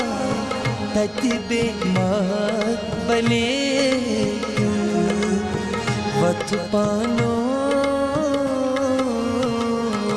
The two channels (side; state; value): both; identical; correlation 1.00